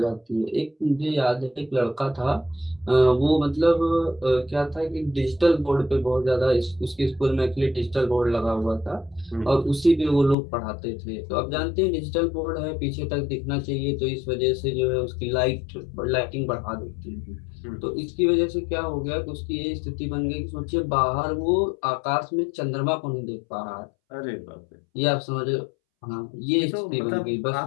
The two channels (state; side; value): drops out; right; at 10.4 s